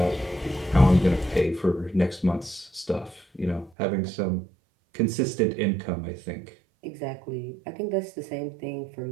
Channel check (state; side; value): drops out; left; at 3.7 s